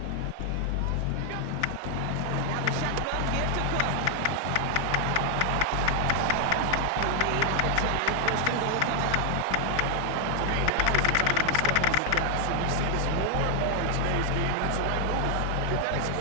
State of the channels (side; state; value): both; different; correlation 0.00